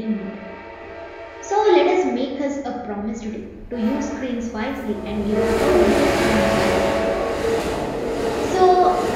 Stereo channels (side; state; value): both; identical; correlation 1.00